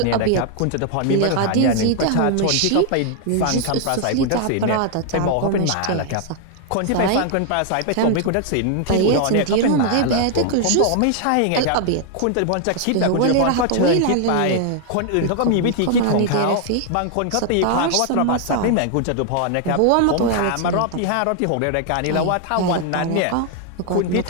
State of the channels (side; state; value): both; different; correlation 0.00